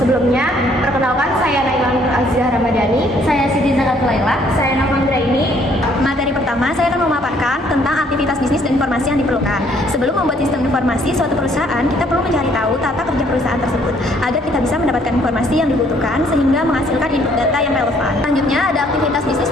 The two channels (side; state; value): both; normal; correlation 0.64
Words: perkenalkan saya Naila Nur Azizah Ramadhani. Saya Siti Zakatul Laila. Saya Navandra ini. Materi pertama, saya akan memaparkan tentang aktivitas bisnis dan informasi yang diperlukan. Sebelum membuat sistem informasi suatu perusahaan, kita perlu mencari tahu tata kerja perusahaan tersebut agar kita bisa mendapatkan informasi yang dibutuhkan sehingga menghasilkan input data yang relevan. Selanjutnya, ada aktivitas bisnis